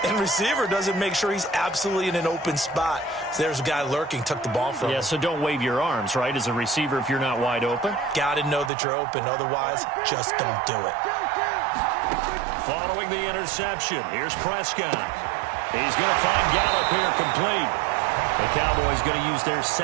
and receiver doesn't make sure he's absolutely in an open spot. So there's a guy lurking, took the ball from him. Yeah, so don't wave your arms, right, as a receiver if you're not wide open. Got to know that you're open. Otherwise, just don't do it. Following the interception, here's Prescott. He's going to find Gallup here complete. The Cowboys going to use their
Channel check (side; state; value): left; drops out; at 8.7 s